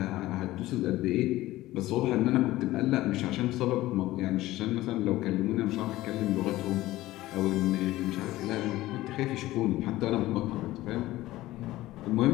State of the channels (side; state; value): right; quieter; 16.8 dB